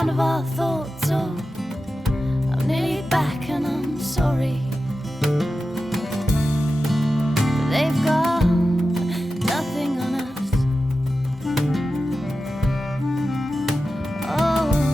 of our thoughts. Oh, I'm nearly back and I'm sorry. But they've got nothing on us. Oh,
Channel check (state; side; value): normal; both; correlation 0.92